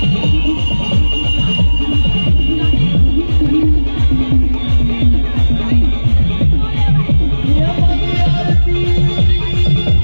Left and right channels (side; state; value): both; inverted; correlation -1.00